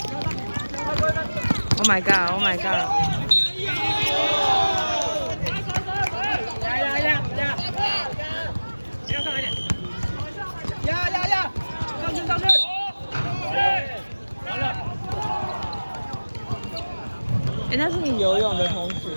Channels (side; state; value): both; inverted; correlation -1.00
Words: Oh my god! Oh my god! 上去！完了！那是你游泳的同学。